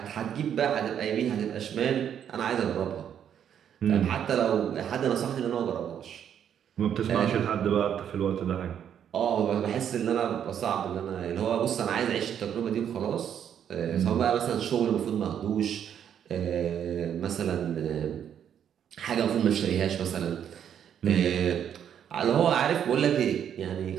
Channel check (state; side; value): quieter; left; 9.1 dB